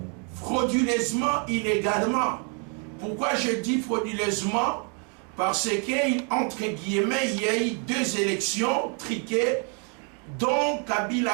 frauduleusement, illégalement. Pourquoi je dis frauduleusement? Parce qu'entre guillemets, il y a eu 2 élections triquées dont Kabila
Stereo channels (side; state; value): left; quieter; 36.1 dB